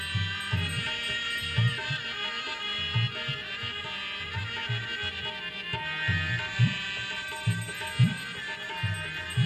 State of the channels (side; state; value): both; identical; correlation 1.00